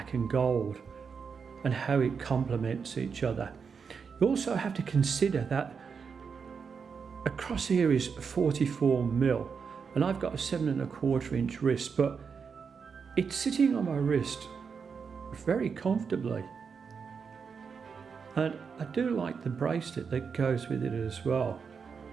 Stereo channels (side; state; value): left; quieter; 5.9 dB